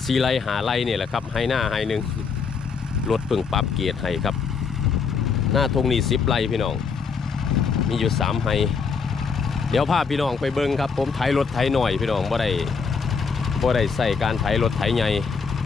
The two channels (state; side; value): quieter; right; 5.5 dB